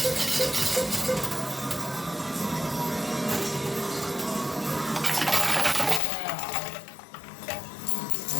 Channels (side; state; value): right; drops out; at 6.0 s